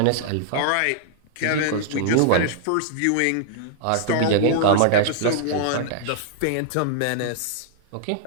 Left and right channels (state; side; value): different; both; correlation -0.01